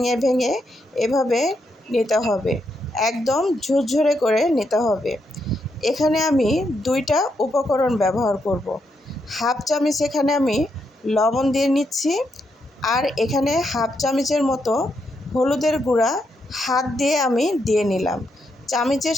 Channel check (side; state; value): both; normal; correlation 0.80